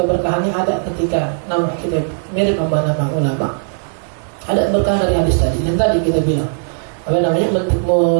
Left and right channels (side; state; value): left; silent; digital silence